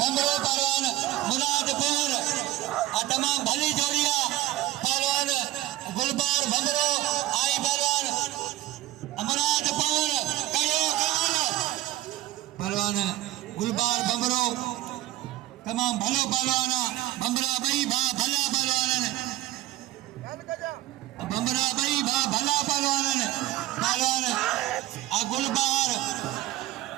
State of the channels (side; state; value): left; quieter; 15.5 dB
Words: भंगरो पहलवान मुराद पवन तमाम भली जोड़िया पहलवान गुलबार भंगरो आई पहलवान मुराद पवन करियो पहलवान गुलबार भंगरो तमाम भलो पहलवाना भंगरा बई भा भला पहलवान भंगरा बई भा भला पहलवान पहलवान गुलबार